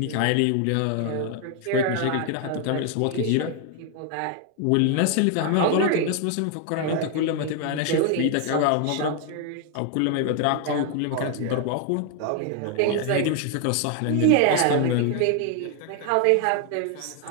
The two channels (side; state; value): both; different; correlation 0.00